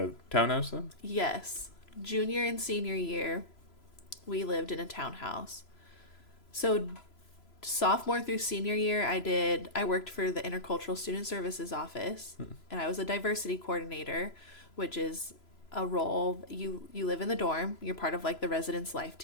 a townhouse then? Yes. Junior and senior year, we lived in a townhouse. So sophomore through senior year, I worked for the Intercultural Student Services office, and I was a diversity coordinator, which is a role you live in the dorm. You're part of like the residence life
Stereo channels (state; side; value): late; right; 3.0 ms